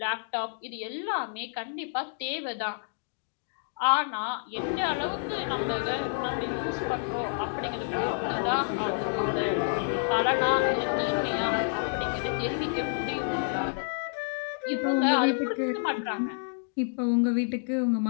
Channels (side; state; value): right; silent; digital silence